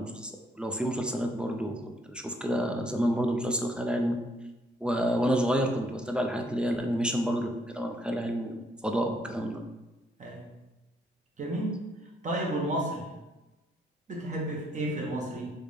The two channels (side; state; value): both; normal; correlation 0.70